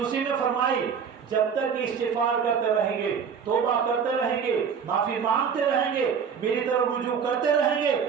میں فرمائی جب تک استغفار کرتے رہیں گے، توبہ کرتے رہیں گے، معافی مانگتے رہیں گے، میری طرف رجوع کرتے رہیں گے،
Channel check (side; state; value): left; quieter; 6.8 dB